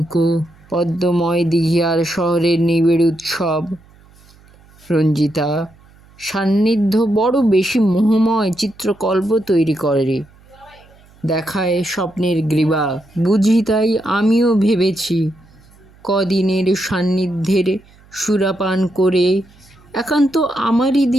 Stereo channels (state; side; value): noise; right; hum, 27 dB below the sound